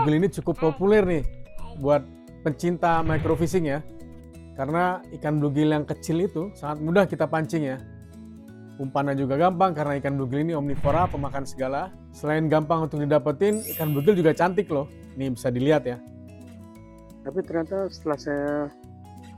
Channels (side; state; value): both; identical; correlation 1.00